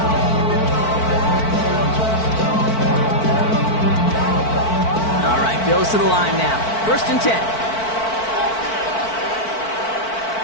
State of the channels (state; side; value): late; right; 4.5 ms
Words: All right, Bills to the line now. 1st and 10.